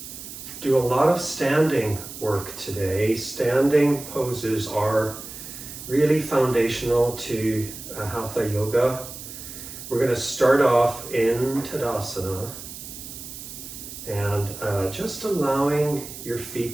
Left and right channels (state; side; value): noise; right; hiss, 12 dB below the sound